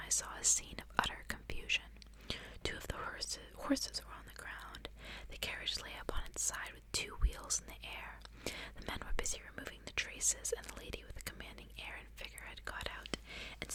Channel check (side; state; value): both; identical; correlation 1.00